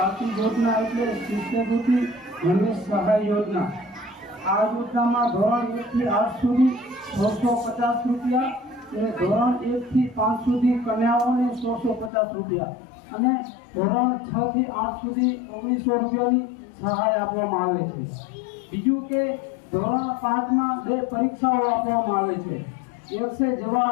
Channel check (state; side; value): drops out; right; at 12.1 s